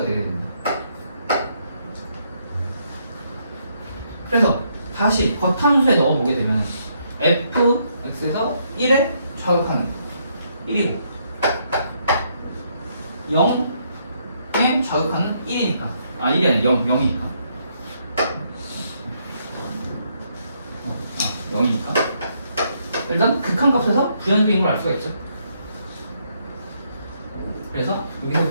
되게 됩니다. 그래서 다시 겉함수에 넣어보게 되면 fx에서 1에 좌극하는 1이고 0에 좌극하는 1이니까 1이 아니라 0이니까 0이니까 일단 극한값에서 불연속인 걸 알 수가 있죠. 그래서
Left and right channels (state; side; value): inverted; both; correlation -0.74